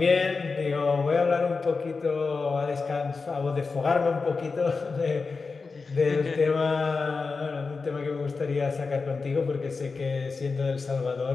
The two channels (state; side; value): quieter; right; 4.4 dB